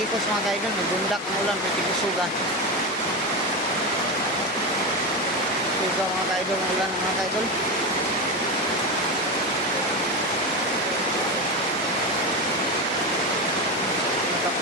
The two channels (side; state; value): both; normal; correlation 0.18